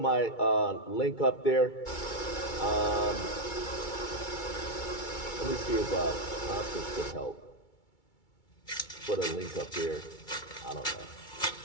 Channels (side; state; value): right; late; 2.3 ms